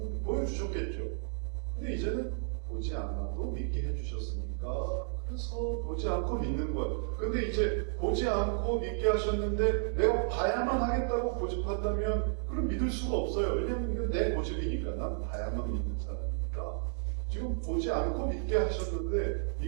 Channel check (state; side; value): silent; left; digital silence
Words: 보여주셨겠죠. 근데 이제는 보지 않아도 믿게 해주셨으니까 그래서 보지 않고 믿는 거예요. 근데 이제 보지 않고 믿게 하셨는데 내가 봐야만 하겠다고 고집한다면 그럼 믿을 수가 없어요. 왜냐하면 이건 내 고집이니까. 난 봐야만 믿는 사람이니까. 지금 보지 않고 믿게 하셨는데